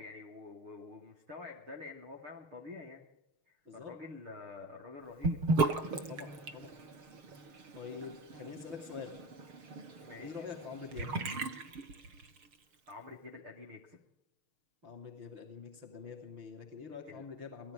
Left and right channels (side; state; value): left; late; 6.5 ms